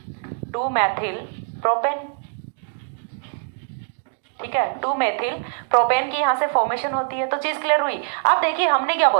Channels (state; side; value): silent; left; digital silence